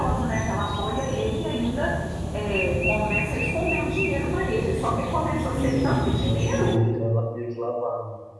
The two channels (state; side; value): identical; both; correlation 1.00